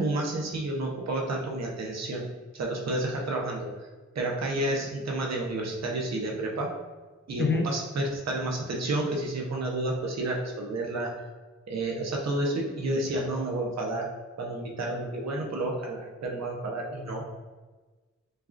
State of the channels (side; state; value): both; normal; correlation 0.36